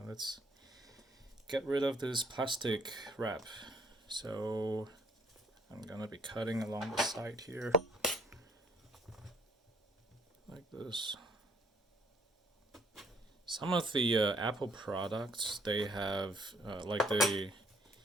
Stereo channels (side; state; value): both; normal; correlation 0.62